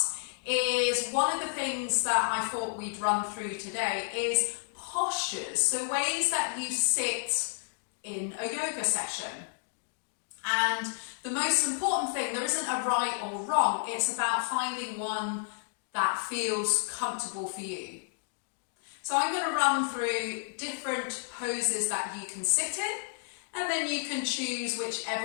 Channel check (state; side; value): silent; right; digital silence